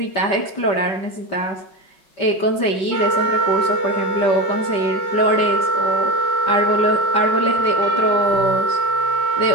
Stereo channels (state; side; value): late; right; 5.1 ms